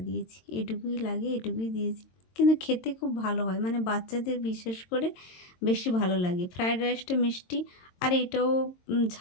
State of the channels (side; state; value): right; late; 22 ms